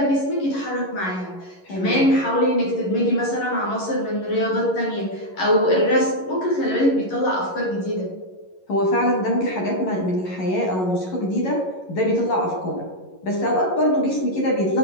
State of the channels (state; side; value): late; right; 11 ms